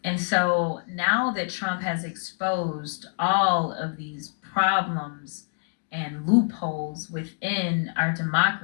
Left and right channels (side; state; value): right; silent; digital silence